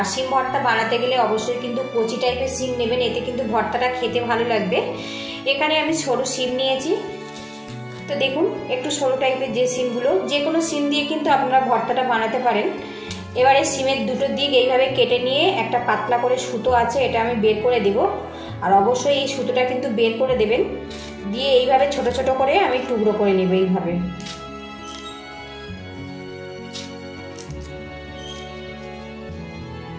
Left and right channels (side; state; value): both; identical; correlation 1.00